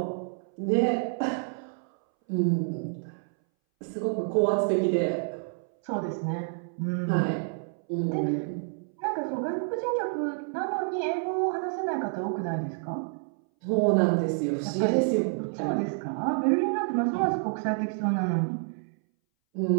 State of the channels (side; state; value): left; silent; 59 dB below the other